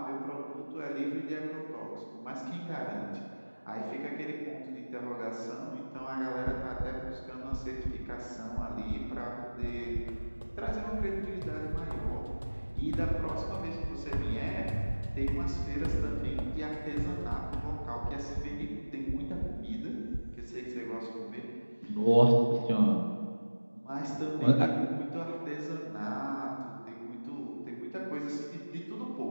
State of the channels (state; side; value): inverted; both; correlation -1.00